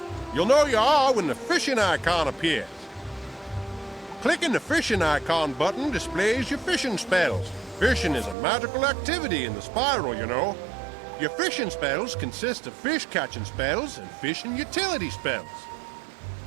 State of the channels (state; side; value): drops out; left; at 8.3 s